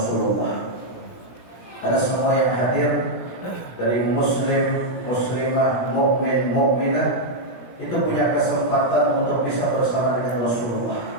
Karena semua yang hadir dari muslim, muslimah, mukmin, mukminah itu punya kesempatan untuk bisa bersama dengan Rasulullah.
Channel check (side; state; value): right; late; 17 ms